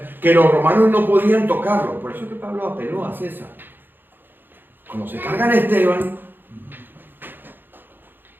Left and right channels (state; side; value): late; left; 0.096 ms